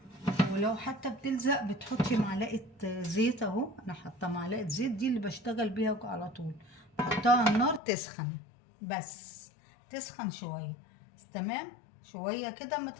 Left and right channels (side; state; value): right; drops out; at 7.8 s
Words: ولو حتى بتلزق بتحطي معلقه زيت. اهو انا حاطه معلقه زيت، دي اللي بشتغل بيها على طول. بحطها على النار تسخن، بس تسخن شويه. تمام، شويه كده اما